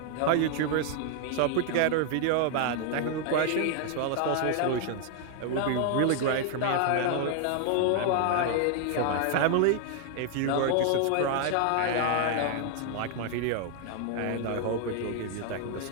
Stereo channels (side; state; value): both; different; correlation 0.00